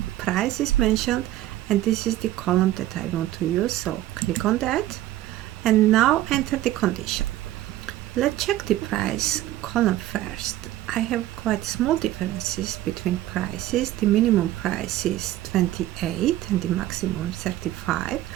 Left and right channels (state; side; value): quieter; left; 14.5 dB